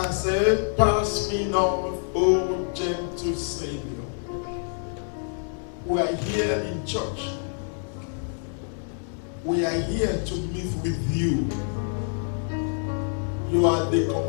said, pass me not, O gentle Savior. We are here in church. We are here to meet with you. You are the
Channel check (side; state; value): right; silent; 61 dB below the other